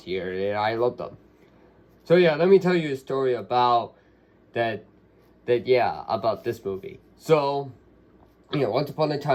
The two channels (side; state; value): both; identical; correlation 1.00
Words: here, and I love them. So yeah, let me tell you a story about about this movie. So, once upon a